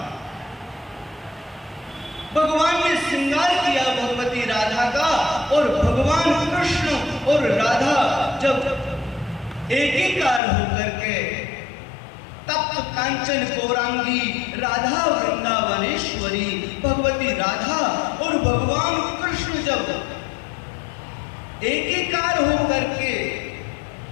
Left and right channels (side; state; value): right; drops out; at 10.4 s